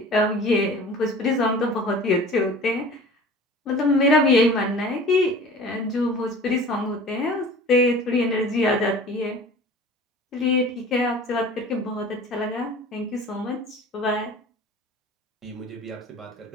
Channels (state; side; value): normal; both; correlation 0.43